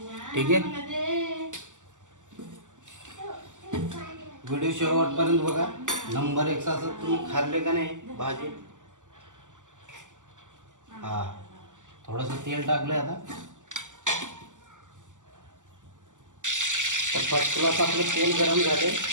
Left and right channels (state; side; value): late; left; 0.87 ms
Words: ठीक आहे. व्हिडिओ शेवटपर्यंत बघा. नंबर 1चं असं तुम्ही खाल्ले का नाही भाजी. हा, थोडंसं तेल टाकलं आता. तर फर्स्ट क्लास आपलं तेल गरम झाले.